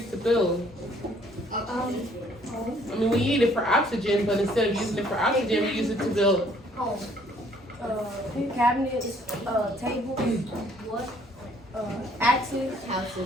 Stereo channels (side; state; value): both; normal; correlation 0.62